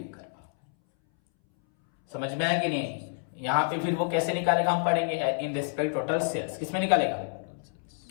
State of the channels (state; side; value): silent; right; 59 dB below the other